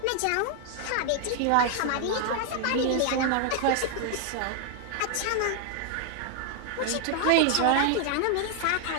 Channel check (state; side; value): different; both; correlation 0.00